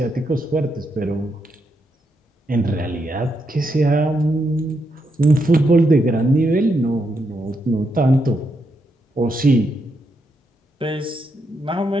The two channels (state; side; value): normal; both; correlation 0.81